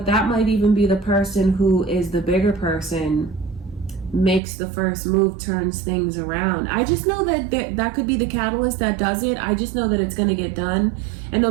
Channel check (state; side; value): drops out; left; at 4.4 s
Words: that might even be the person who is the bigger person, makes the first move, turns things around. I just know that that could be the catalyst that does it. I just know that it's going to get done. And no